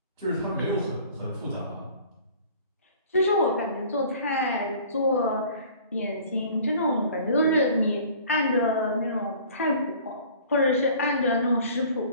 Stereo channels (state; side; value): inverted; both; correlation -0.49